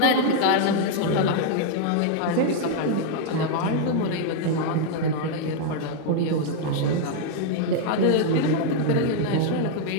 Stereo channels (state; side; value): different; both; correlation 0.00